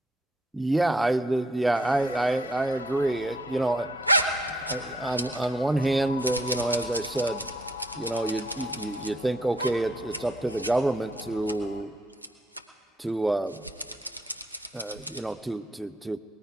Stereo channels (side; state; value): both; normal; correlation 0.65